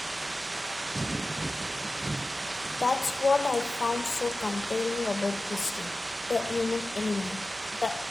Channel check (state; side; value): normal; both; correlation 0.95